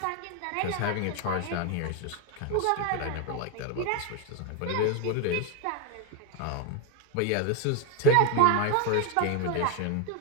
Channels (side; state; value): both; different; correlation 0.01